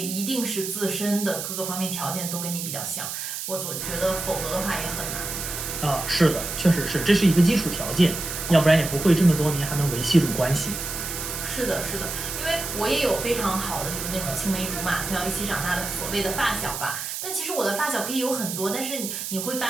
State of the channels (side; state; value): right; noise; hiss, 5 dB below the sound